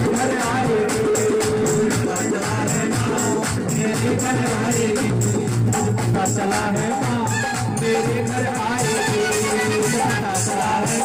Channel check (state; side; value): identical; both; correlation 1.00